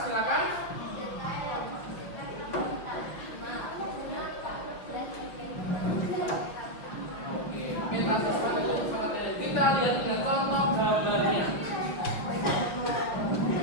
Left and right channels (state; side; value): late; right; 5.7 ms